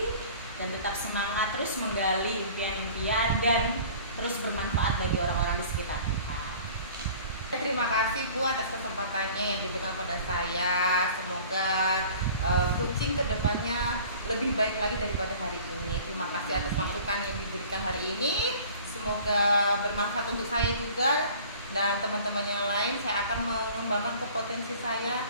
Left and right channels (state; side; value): inverted; both; correlation -0.46